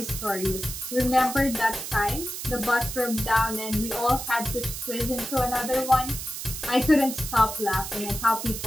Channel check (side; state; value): right; noise; hiss, 7 dB below the sound